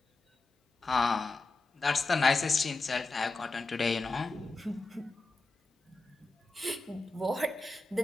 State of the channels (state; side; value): quieter; right; 3.3 dB